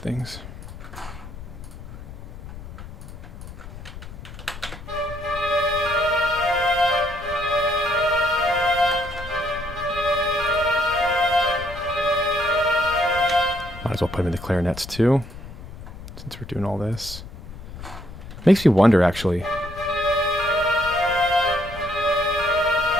Might as well put them in the clarinets too, since we're doing all this. Makes me wonder, actually.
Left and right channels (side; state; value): left; noise; rumble, 13 dB below the sound